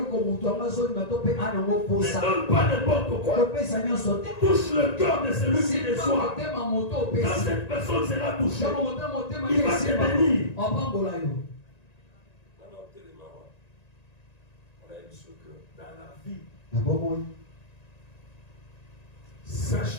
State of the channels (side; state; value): right; late; 1.9 ms